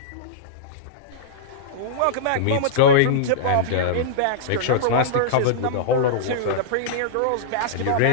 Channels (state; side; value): different; both; correlation -0.03